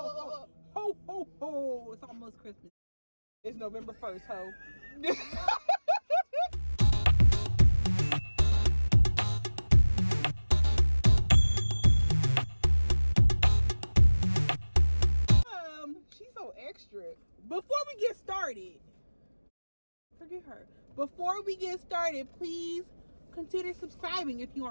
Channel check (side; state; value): both; inverted; correlation -1.00